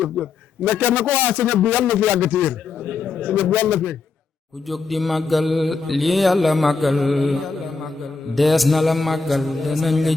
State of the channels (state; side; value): quieter; right; 4.5 dB